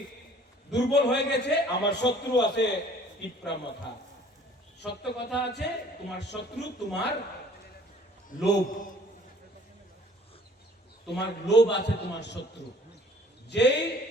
দুর্বল হয়ে গেছে, আমার শত্রু আছে তিপরা মাথা। সত্য কথা আছে, তোমার শত্রু তোমার লোভ, তোমার লোভ আছে তোমার শত্রু। যেই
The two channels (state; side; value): normal; both; correlation 0.54